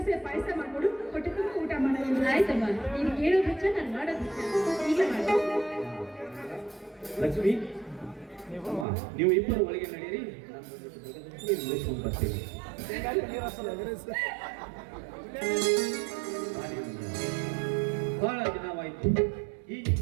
ಪಾಯಸ ಮಾಡ್ಕೊಡು ಹೊಟ್ಟೆ ತುಂಬ ಊಟ ಮಾಡೋದು. ಆಯ್ತಮ್ಮ, ನೀನು ಕೇಳೋದು ಹೆಚ್ಚ ನಾನು ಮಾಡೋದು ಈಗ ಲಕ್ಷ್ಮಿ ಅಮ್ಮ, ನೀವು ಇಬ್ಬರು ಒಳಗೆ ನಡೆಯಿರಿ, ನಾನು ಮುಗಿಸ್ಕೊಂಡು ಬರ್ತೀನಿ. ಬಹಳ ದಿನವಾಯಿತು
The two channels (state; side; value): drops out; left; at 8.8 s